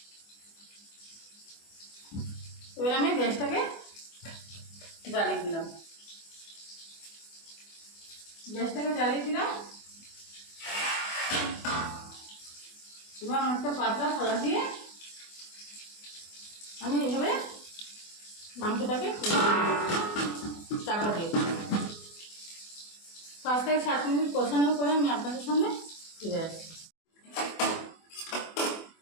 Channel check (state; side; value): late; right; 24 ms